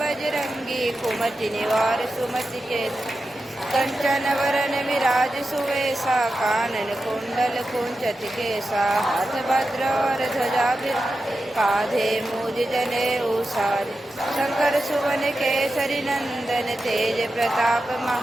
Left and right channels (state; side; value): normal; both; correlation 0.91